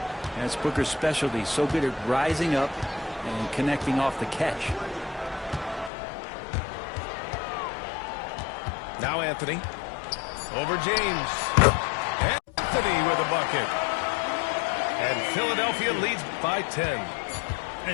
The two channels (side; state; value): right; drops out; at 5.9 s